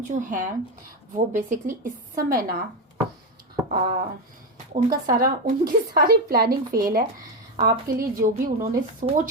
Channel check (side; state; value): both; normal; correlation 0.11